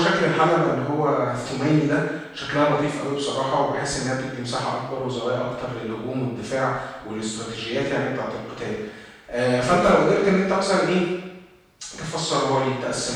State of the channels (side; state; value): both; identical; correlation 1.00